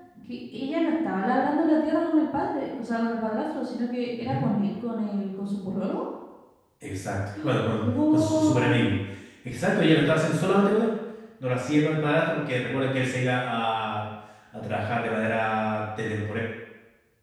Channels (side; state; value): both; identical; correlation 1.00